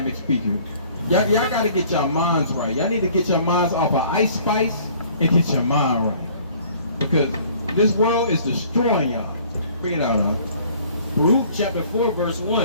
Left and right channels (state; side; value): inverted; both; correlation -0.55